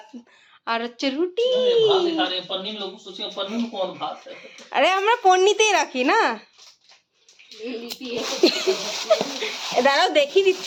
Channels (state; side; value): identical; both; correlation 1.00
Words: আর হচ্ছে রুটি। আরে আমরা পন্নিতেই রাখি না, দাঁড়াও দেখিয়ে